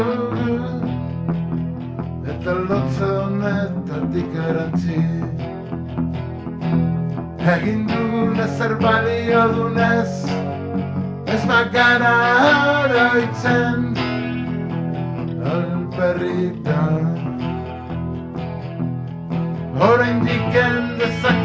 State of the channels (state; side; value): identical; both; correlation 1.00